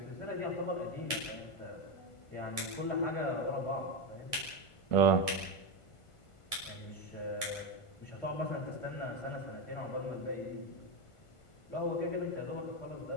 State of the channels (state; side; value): late; right; 1.5 ms